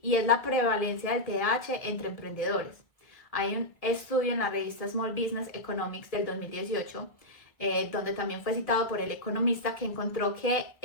y es la prevalencia del TDAH entre emprendedores. Hay un estudio en la revista Small Business Economics del 2018, donde también fue citado por el economista, que encontró que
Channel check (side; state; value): right; late; 1.7 ms